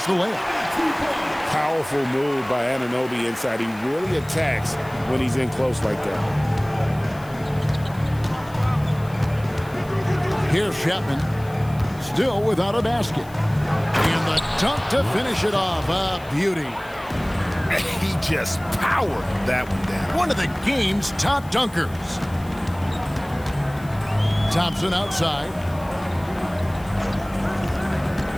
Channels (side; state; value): left; noise; hiss, 23 dB below the sound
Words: the layup. Powerful move by Anunoby inside. He really attacks when he's in close like that. Here's Chapman. Still without a basket. And the dunk to finish it off. A beauty. He just powered that one down. One of the game's top dunkers. Thompson outside.